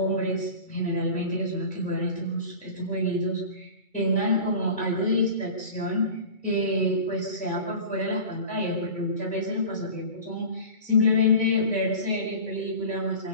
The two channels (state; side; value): late; right; 2.3 ms